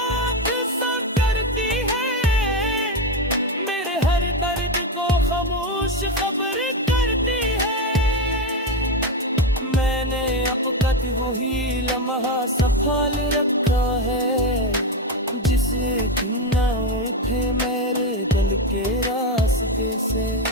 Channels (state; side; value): normal; both; correlation 0.12